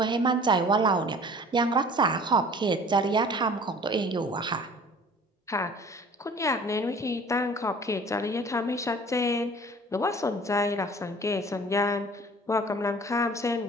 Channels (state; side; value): normal; both; correlation 0.48